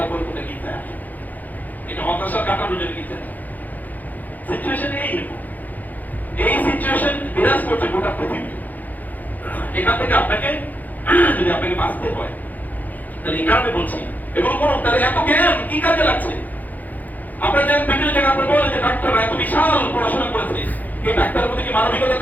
কোথায় গির্জা আসে। এটা হতাশা কাটানোর জন্য গির্জা। সিচুয়েশন এইরকম। এই সিচুয়েশন বিরাজ করছে গোটা পৃথিবী। এখান থেকে আপনাকে যদি আপনাকে বাঁচতে হয়, তাহলে এই কারণে বলছি এগুলো কোনো, তাহলে এত জ্ঞান কি কাজে লাগছে? আপনারা যে বিভিন্ন জায়গায় আপনি বলেন যে ডাক্তাররা এত বিশাল পড়াশোনা করেছে, এই ডাক্তারের প্রতি কি মানবিকতা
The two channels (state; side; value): late; right; 0.082 ms